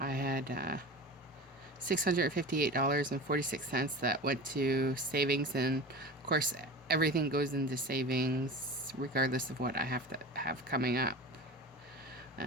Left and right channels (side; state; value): both; normal; correlation 0.33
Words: had $658.46 that went to savings, and of course everything goes into savings regardless of what I have to have coming up.